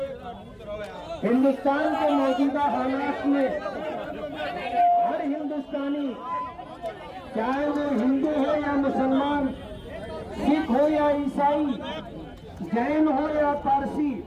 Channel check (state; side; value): identical; both; correlation 1.00